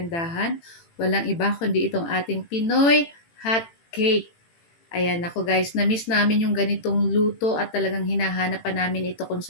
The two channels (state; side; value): late; right; 18 ms